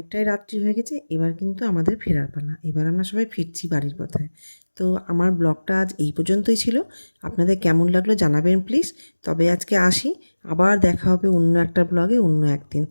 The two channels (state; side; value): inverted; both; correlation -1.00